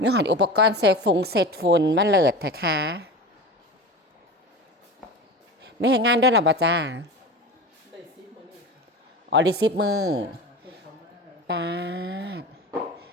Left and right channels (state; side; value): normal; both; correlation 0.30